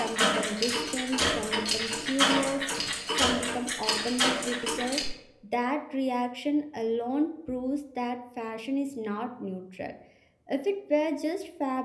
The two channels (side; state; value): both; identical; correlation 1.00